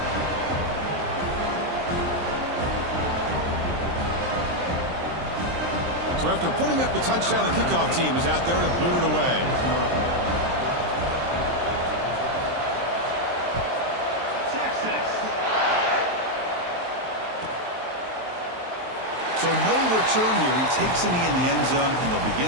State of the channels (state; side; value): late; left; 23 ms